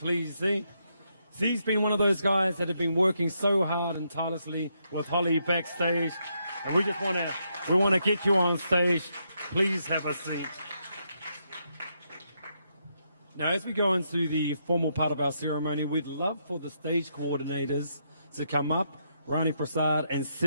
Z. Z's been one of those guys that have been working so hard and tirelessly with Holly backstage. And we just want to get you on stage. Please have a seat. Now, as we go into the formal part of our ceremony, we'd love for the stage coordinators to come up, Rani Prasad and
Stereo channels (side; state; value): both; inverted; correlation -0.79